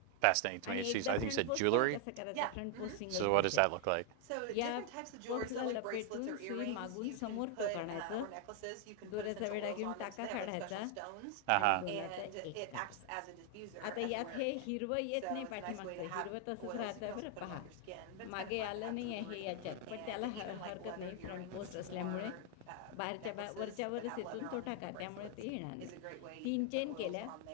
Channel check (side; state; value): both; different; correlation 0.00